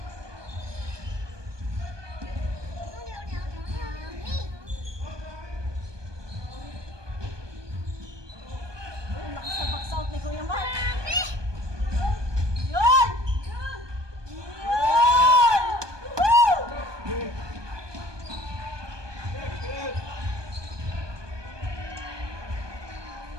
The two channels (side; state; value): left; late; 1.2 ms